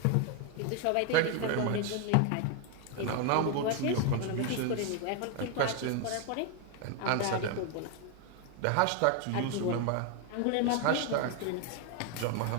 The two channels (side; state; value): both; different; correlation 0.01